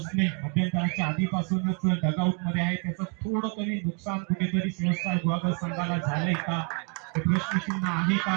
मध्यंतराच्या आधीपासूनच डगआउट मध्ये आहे. त्याचं थोडं तरी नुकसान कुठेतरी सेव्हन स्टार गुहागर संघाला झालंय का हे प्रश्नचिन्ह आहे का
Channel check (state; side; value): quieter; left; 36.2 dB